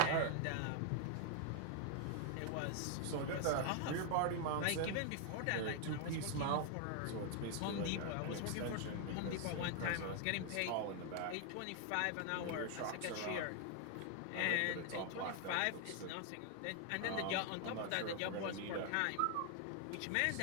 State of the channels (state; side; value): different; both; correlation 0.00